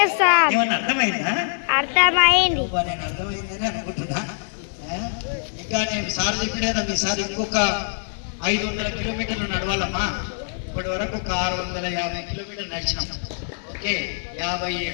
ఏమన్నా అర్థమైందా? అర్థమైంది. నేను అర్థమైందని అనుకుంటున్నా. ఇంకా నేను సార్ చెప్పిన కదా, మీ సార్ ఇంకొక 500 కిలోమీటర్లు నడవాలమ్మా. ఇప్పటి వరకు ఒక 650 కిలోమీటర్లు నడిచినాం. ఓకే,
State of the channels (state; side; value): silent; right; 56 dB below the other